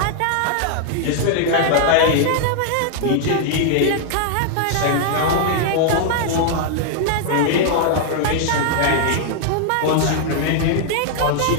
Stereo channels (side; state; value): both; different; correlation -0.01